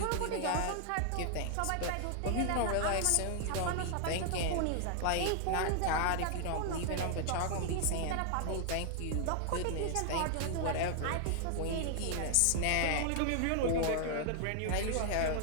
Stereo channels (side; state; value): both; different; correlation 0.00